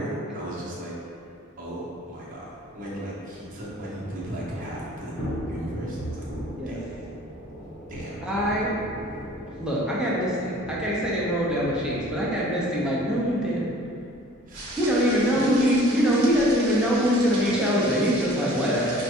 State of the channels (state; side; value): normal; both; correlation 0.51